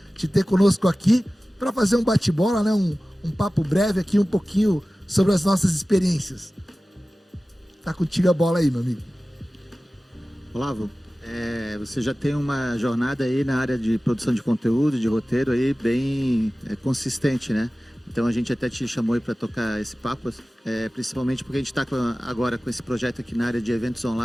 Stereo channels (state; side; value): normal; both; correlation 0.96